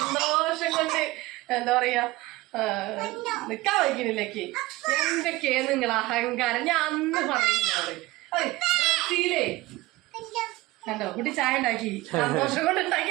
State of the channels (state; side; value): quieter; left; 19.4 dB